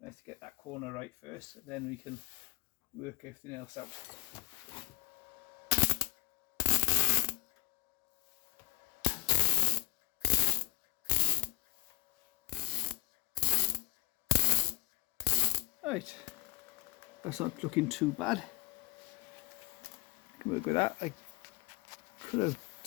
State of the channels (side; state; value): right; quieter; 24.5 dB